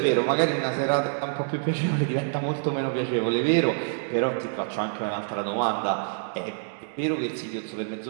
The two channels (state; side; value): silent; left; 61 dB below the other